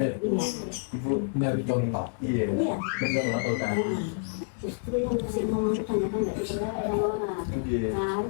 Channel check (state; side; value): silent; right; 59 dB below the other